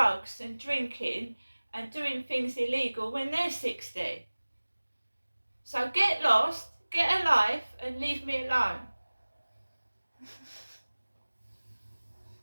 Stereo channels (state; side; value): inverted; both; correlation -1.00